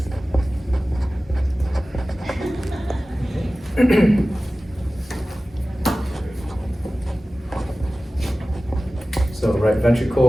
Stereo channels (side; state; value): both; normal; correlation 0.96